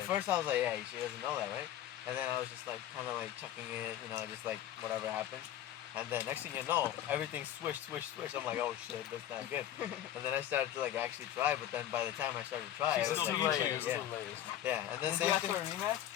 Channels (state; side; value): quieter; right; 11.8 dB